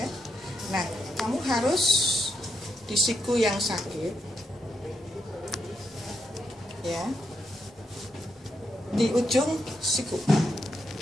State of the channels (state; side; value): normal; both; correlation 0.82